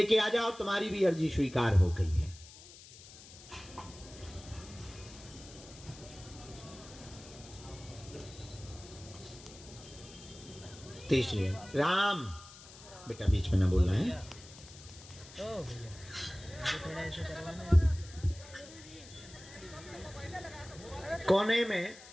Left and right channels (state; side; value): noise; left; hiss, 18 dB below the sound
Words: आ जाओ, तुम्हारी भी अर्जी स्वीकार हो गई है। तीसरी राम, बेटा बीच में ना बोलना है। कोने में